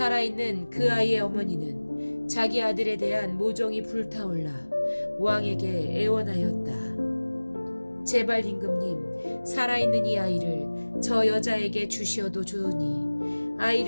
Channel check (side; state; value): both; inverted; correlation -1.00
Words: 그 아이의 어머니는 자기 아들에 대한 모종이 불타올라 왕에게 애원하였다. 제발 임금님, 살아있는 이 아이를 저 여자에게 주시어도 좋으니